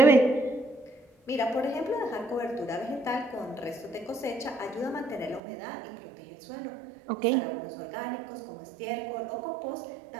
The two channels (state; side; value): drops out; left; at 5.4 s